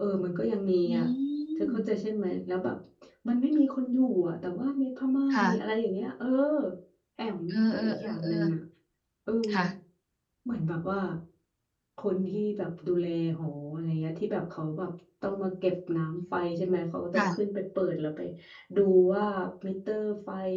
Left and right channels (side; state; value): both; identical; correlation 1.00